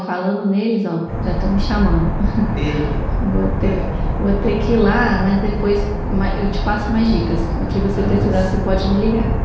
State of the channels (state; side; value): identical; both; correlation 1.00